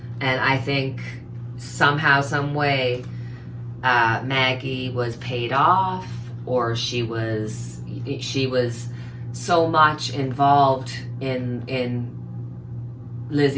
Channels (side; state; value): both; identical; correlation 1.00